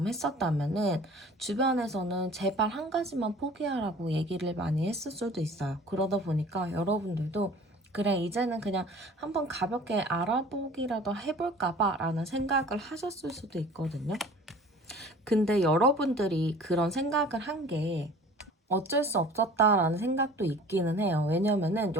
했었다면은 주변에서는 제발 한 가지만 포기하라고 얘기를 많이 했을 수도 있어요. 그러다 보니까 여러분들도 그래 이제는 그냥 한번 가볍게 알아보기라도 해볼까 봐 라는 생각을 하셨을 수도 있거든요. 근데 여러분들이 그런 생각을 한 게 어쩔 수 없었다라는 생각도 있기는 해요. 왜냐면은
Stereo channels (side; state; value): both; normal; correlation 0.46